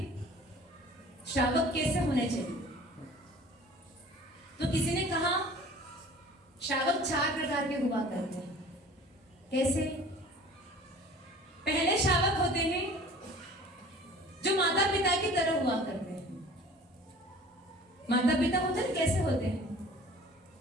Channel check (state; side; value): normal; both; correlation 0.46